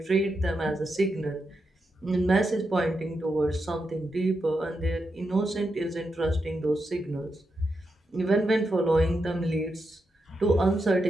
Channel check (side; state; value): both; normal; correlation 0.86